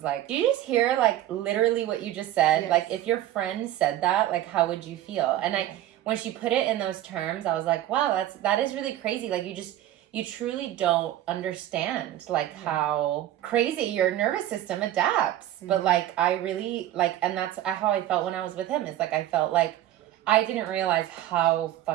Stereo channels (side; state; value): left; quieter; 13.2 dB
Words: like, do you just hear like literally what you just said? Yes. Like if your friend said that, like how would you feel? And when she put it in those terms, I was like, wow, that is really crazy. Like you truly don't understand like how crazy your nervous system adapts. But like I really like, and that's how I felt when I was with him. Is like I felt like I didn't realize how